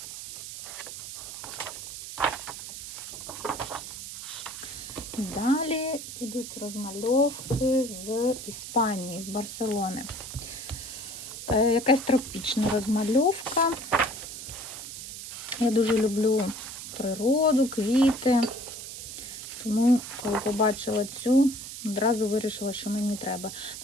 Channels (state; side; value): noise; right; hiss, 10 dB below the sound